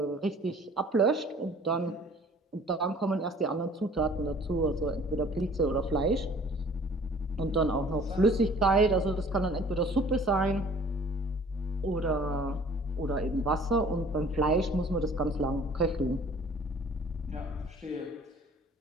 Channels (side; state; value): both; normal; correlation 0.52